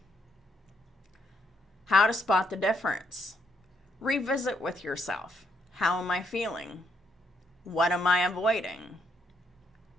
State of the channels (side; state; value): both; normal; correlation 0.75